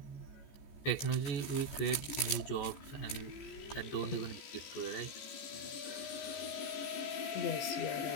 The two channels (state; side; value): late; right; 14 ms